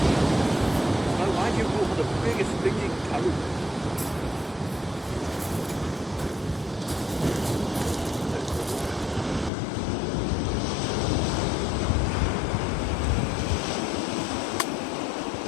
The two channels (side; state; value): right; drops out; at 9.5 s